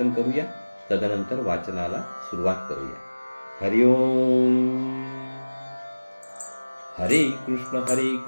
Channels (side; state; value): both; inverted; correlation -1.00